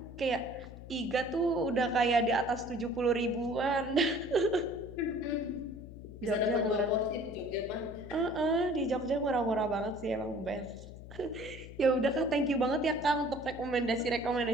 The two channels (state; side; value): noise; left; hum, 14 dB below the sound